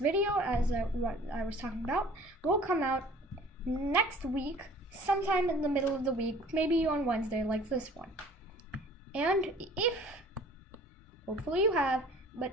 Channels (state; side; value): normal; both; correlation 0.49